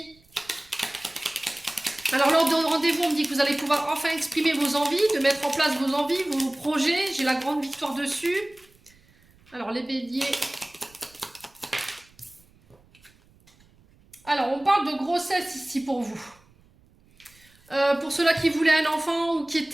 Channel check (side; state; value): right; noise; rumble, 30 dB below the sound